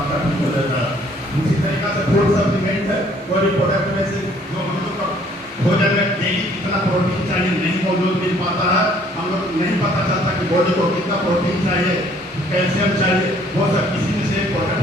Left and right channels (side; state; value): both; normal; correlation 0.60